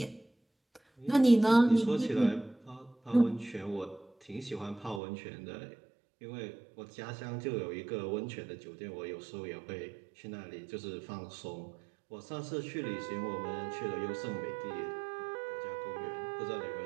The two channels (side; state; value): left; drops out; at 5.0 s